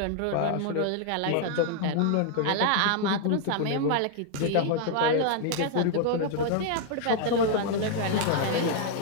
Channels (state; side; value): different; both; correlation 0.00